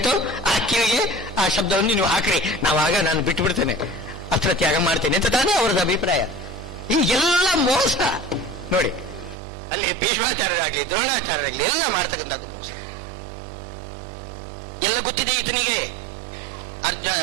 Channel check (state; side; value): drops out; left; at 9.3 s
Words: ಆ ಕಿವಿಗೆ ಆ ಶಬ್ದವನ್ನು ನೀವು ಹಾಕ್ರಿ, ನಾನು ಬಿಟ್ಟು ಬಿಡ್ತೇನೆ, ಅಸ್ತ್ರತ್ಯಾಗ ಮಾಡ್ತೇನೆ ಅಂತ ತಾನೇ ಅವರದ್ದು ಅಭಿಪ್ರಾಯ. ಈ ಎಲ್ಲ ಮೋಸ ನೋಡಿ, ಅಲ್ಲಿ ಭೀಷ್ಮಾಚಾರ್ಯರಾಗಲಿ ದ್ರೋಣಾಚಾರ್ಯರಾಗಲಿ ಎಲ್ಲ ಮಾಡ್ತಕ್ಕಂಥದ್ದು ಮೋಸ. ಎಲ್ಲ ಗೊತ್ತಿದೆ ಈತನಿಗೆ,